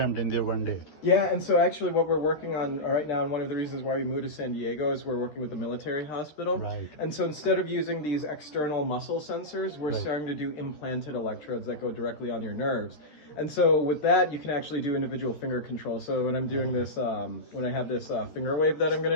in there one day. Yeah, and so actually what we're working on right now, and one of the reasons why we moved to San Diego, is we're working with the military hospital. Right. And so instead of using these external muscle sensors, we're starting to do implanted electrodes that go directly on your nerves. And so with that, you can actually do individual finger control. So when I'm doing this, when I have this finger wave that I'm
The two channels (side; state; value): right; late; 13 ms